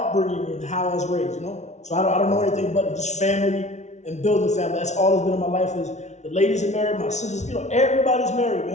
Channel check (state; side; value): late; right; 0.33 ms